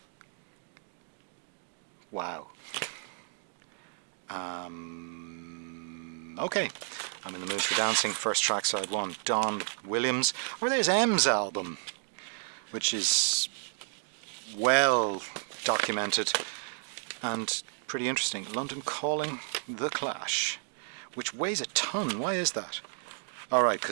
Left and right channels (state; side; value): silent; left; digital silence